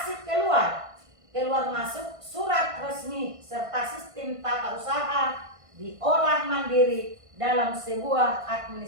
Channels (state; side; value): late; left; 1.5 ms